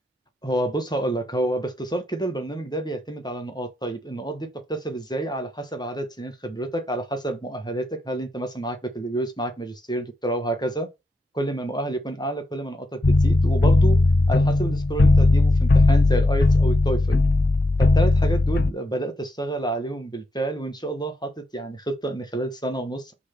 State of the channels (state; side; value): normal; both; correlation 0.84